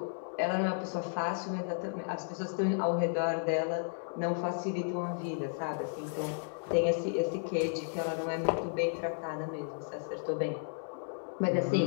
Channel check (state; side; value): silent; right; 55 dB below the other